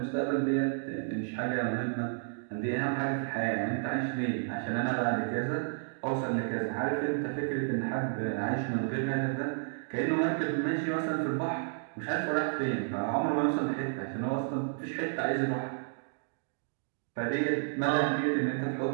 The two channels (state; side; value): silent; left; digital silence